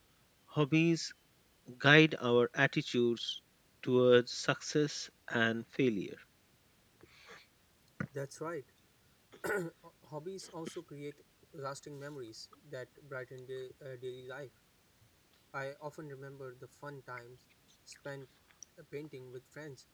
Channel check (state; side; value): identical; both; correlation 1.00